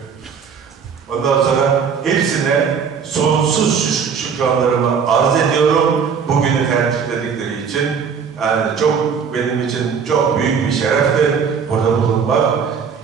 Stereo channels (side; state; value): left; quieter; 6.4 dB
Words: Ondan sonra hepsine sonsuz şükranlarımı arz ediyorum. Bugünü tercihledikleri için. Yani benim için çok büyük bir şerefti burada bulunmak.